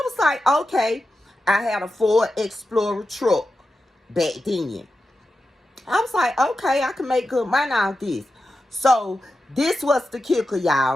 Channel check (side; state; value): both; normal; correlation 0.91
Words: was like, okay. I had a Ford Explorer truck back then. I was like, okay, I can make good money out of this. So this was the kicker,